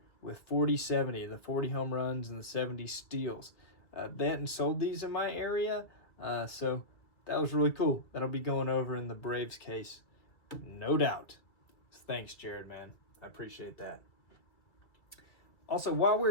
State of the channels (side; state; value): right; late; 2.1 ms